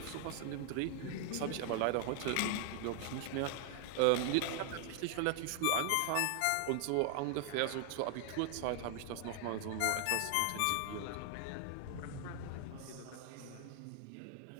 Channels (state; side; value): different; both; correlation 0.00